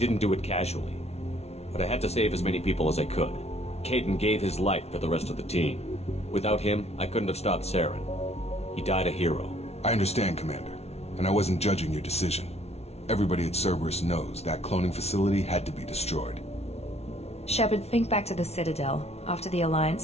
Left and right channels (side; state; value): right; late; 0.31 ms